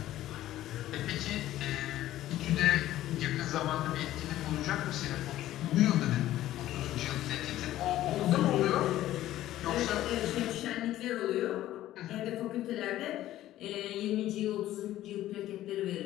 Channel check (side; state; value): right; quieter; 14.0 dB